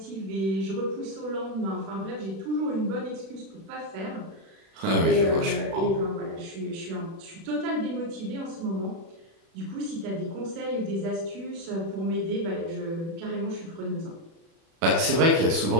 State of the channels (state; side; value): late; left; 36 ms